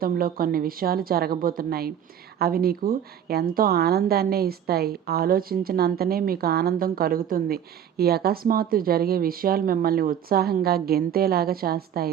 కొన్ని విషయాలు జరగబోతున్నాయి. అవి నీకు ఎంతో ఆనందాన్నే ఇస్తాయి. ఆలోచించినంతనే మీకు ఆనందం కలుగుతుంది. ఈ అకస్మాత్తు జరిగే విషయాలు మిమ్మల్ని ఉత్సాహంగా గెంతేలాగా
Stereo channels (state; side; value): quieter; left; 9.4 dB